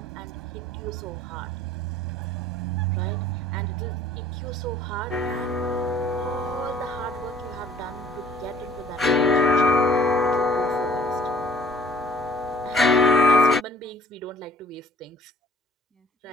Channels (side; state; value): both; normal; correlation 0.55